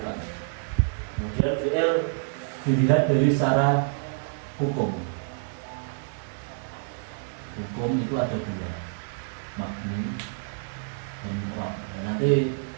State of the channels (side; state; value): left; silent; digital silence